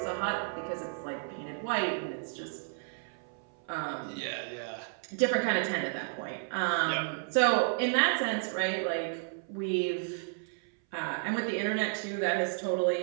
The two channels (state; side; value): silent; left; 56 dB below the other